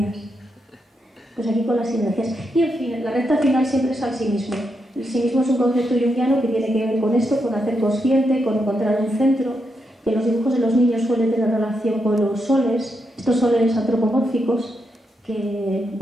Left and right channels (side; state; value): both; normal; correlation 0.83